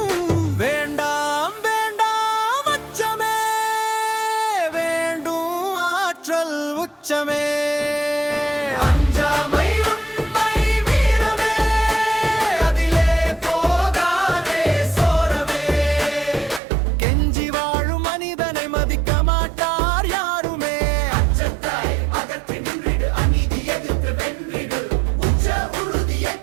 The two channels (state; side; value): drops out; left; at 16.6 s